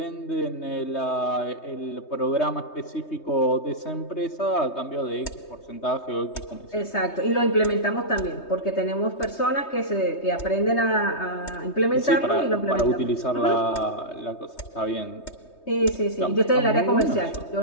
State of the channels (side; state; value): right; late; 3.2 ms